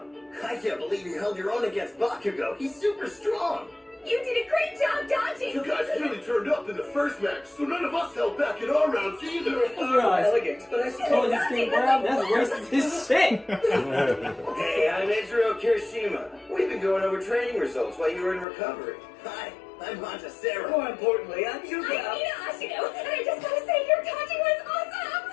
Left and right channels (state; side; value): drops out; right; at 18.4 s